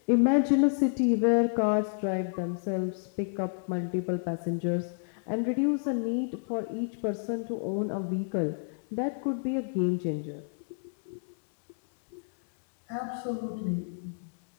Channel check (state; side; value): silent; right; digital silence